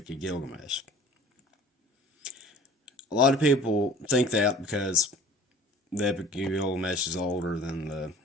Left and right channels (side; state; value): both; normal; correlation 0.47